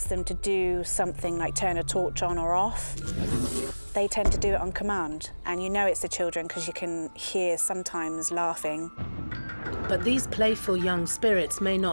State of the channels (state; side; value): inverted; both; correlation -1.00